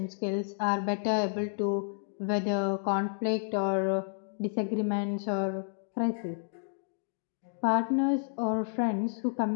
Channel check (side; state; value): right; silent; digital silence